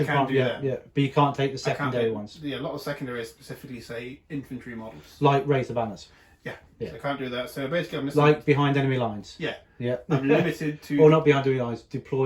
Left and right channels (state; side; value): identical; both; correlation 1.00